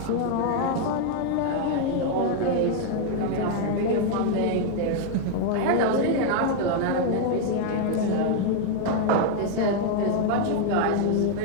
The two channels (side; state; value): both; different; correlation 0.00